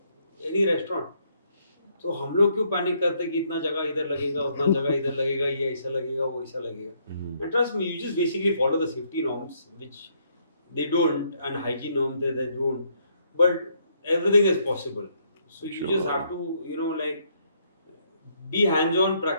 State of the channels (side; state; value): both; inverted; correlation -0.71